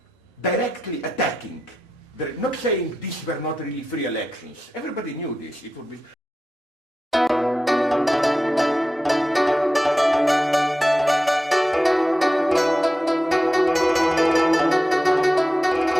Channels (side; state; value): both; normal; correlation 0.90